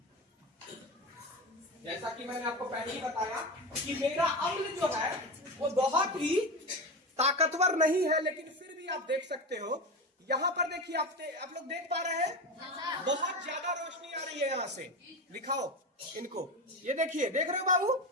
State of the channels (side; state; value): both; normal; correlation 0.22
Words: जैसा कि मैंने आपको पहले ही बताया कि मेरा अम्ल जो है वो बहुत ही ताकतवर नहीं है, लेकिन फिर भी आप देख सकते हो। यहां पर देखिए, आप लोग देख पा रहे हैं, बहुत ज्यादा रोशनी आ रही है यहां से। दिखाओ इनको, ये देखिए, देख रहे हो बाबू,